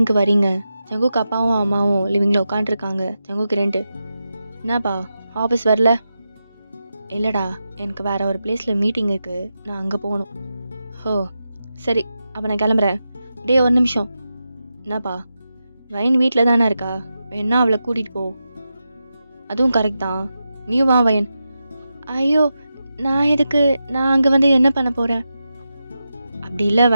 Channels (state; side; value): inverted; both; correlation -0.90